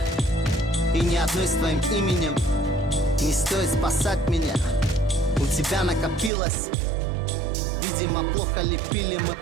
и ни одной с твоим именем. Не стоит спасать меня, у тебя накопилось. Видимо, плохо лепили мы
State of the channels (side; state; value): left; drops out; at 6.3 s